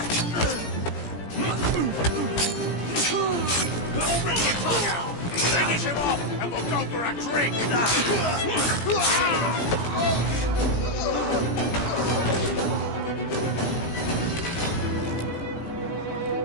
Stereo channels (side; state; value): right; late; 17 ms